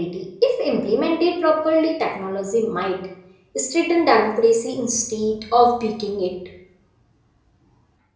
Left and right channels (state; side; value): identical; both; correlation 1.00